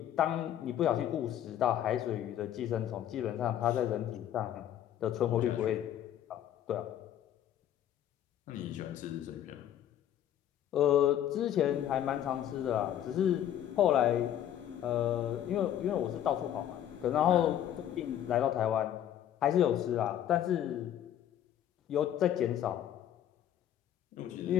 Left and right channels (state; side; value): quieter; right; 10.9 dB